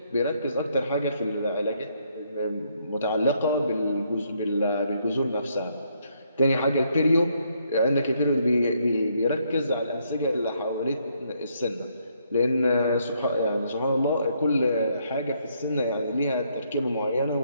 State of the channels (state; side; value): inverted; both; correlation -0.72